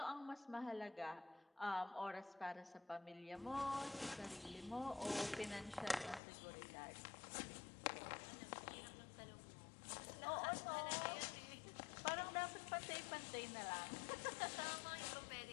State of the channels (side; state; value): right; drops out; at 6.2 s